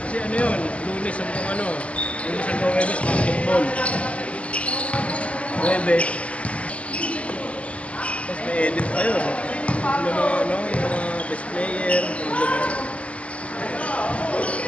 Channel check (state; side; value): late; right; 0.063 ms